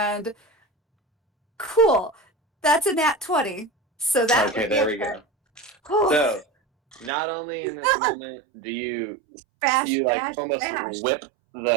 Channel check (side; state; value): left; drops out; at 7.1 s